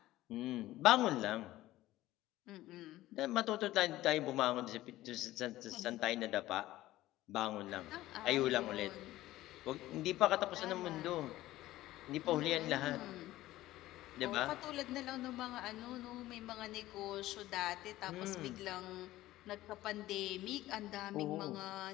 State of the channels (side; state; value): right; quieter; 16.0 dB